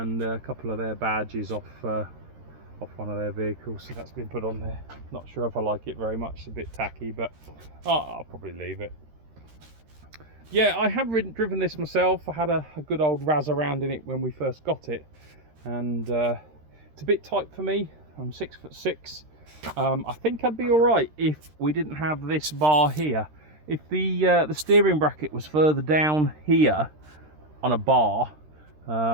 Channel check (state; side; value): late; left; 13 ms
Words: a couple of their badges off one of their vehicles. So that's been put on there. Not sure if I like it very much. It's a bit tacky, but I'll probably leave it. Yeah, I have driven this myself. I had a good old razz around in it when we first got it, and it's a bit tight for me. I'm 6'6". I think I'd be all right if we didn't have this bar here. If the steering bracket was further down here on a bar,